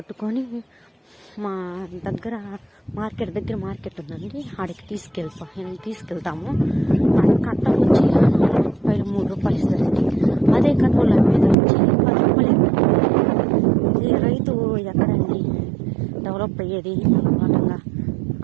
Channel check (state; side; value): drops out; left; at 11.6 s